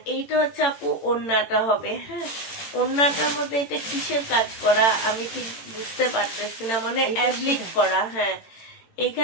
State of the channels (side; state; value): right; late; 18 ms